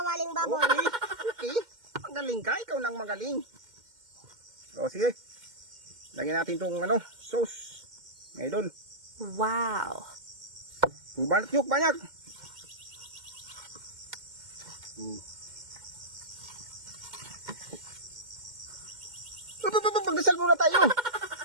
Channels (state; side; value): late; left; 2.1 ms